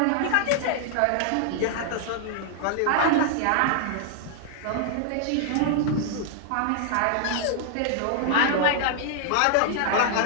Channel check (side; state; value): both; different; correlation -0.01